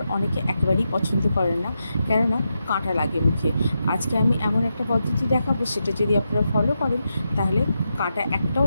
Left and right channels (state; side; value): inverted; both; correlation -0.86